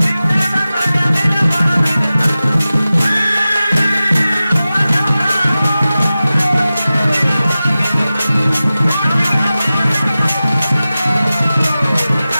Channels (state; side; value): inverted; both; correlation -0.95